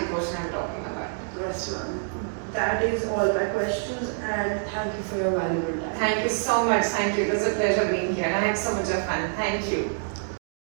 potion I'm talking about. Yes, ma'am. That is all my questions, and thank you for your valuable time. Thank you so much. Thank you. It was a pleasure being here. I had so much of fun. Thank you.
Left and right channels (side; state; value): left; silent; digital silence